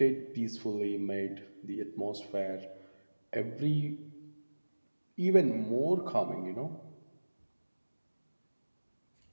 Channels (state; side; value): inverted; both; correlation -1.00